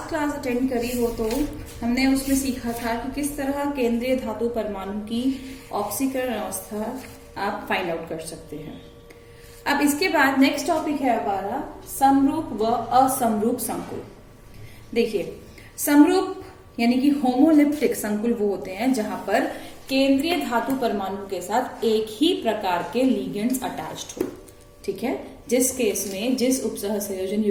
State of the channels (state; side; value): identical; both; correlation 1.00